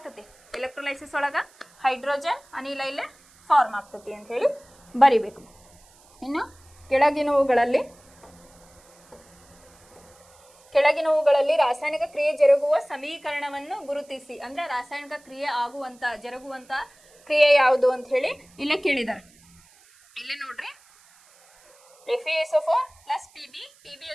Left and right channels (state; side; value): noise; right; hiss, 28 dB below the sound